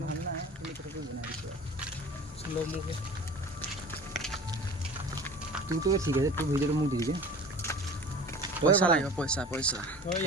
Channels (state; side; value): normal; both; correlation 0.41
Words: নাই তুমি কেনেকৈ বনাই দিছো স্লো মুকে তুই ঠিক আছে তুই ভিডিঅ'টো মোক দি দিবি পইচা লাগিব পইচা পইচা